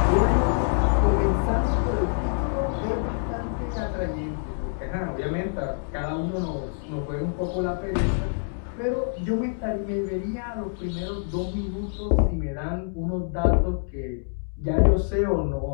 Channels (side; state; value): right; silent; digital silence